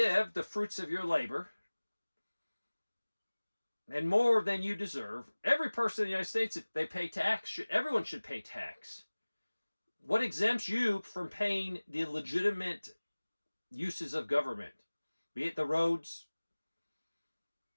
the fruits of your labor and more than you deserve. Every person in the United States, if they pay tax, everyone should pay tax. What exempts you from paying the legitimate uses of government? Be it the roads,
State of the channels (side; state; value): both; inverted; correlation -1.00